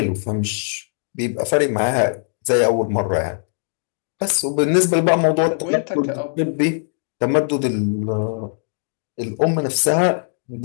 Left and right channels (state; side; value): silent; right; digital silence